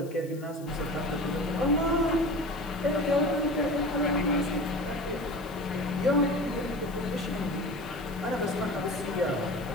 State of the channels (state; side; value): noise; left; hiss, 23 dB below the sound